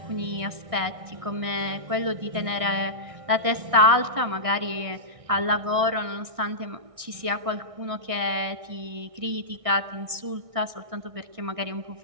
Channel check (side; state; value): left; late; 1.6 ms